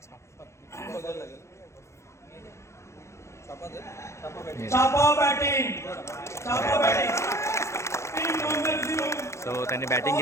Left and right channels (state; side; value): late; right; 0.14 ms